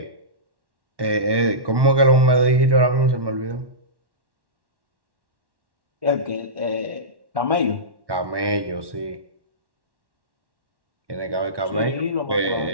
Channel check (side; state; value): left; late; 1.1 ms